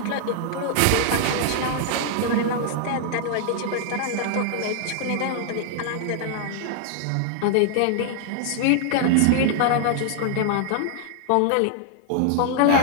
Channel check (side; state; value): both; different; correlation 0.00